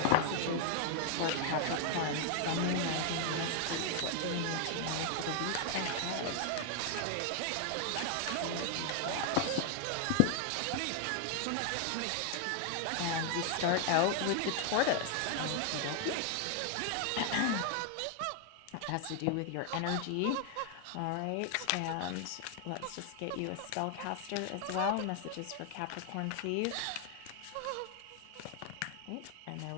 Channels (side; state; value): both; different; correlation 0.00